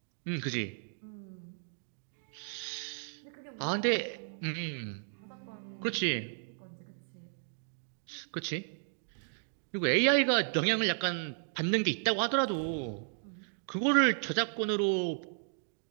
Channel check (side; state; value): left; silent; digital silence